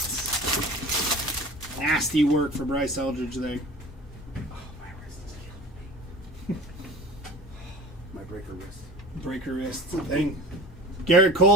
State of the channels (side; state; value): both; normal; correlation 0.39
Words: Nasty work for Bryce Eldridge there. Breaker wrist thing. Garrett